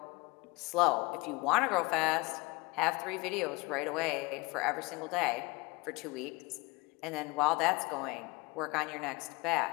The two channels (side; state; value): right; quieter; 24.8 dB